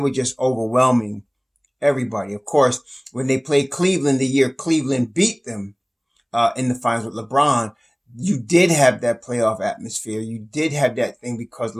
just overwhelming everybody. Of course, when they played Cleveland the year Cleveland beat them in the finals with LeBron, you did have that playoff atmosphere. You did have that thing because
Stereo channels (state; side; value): identical; both; correlation 1.00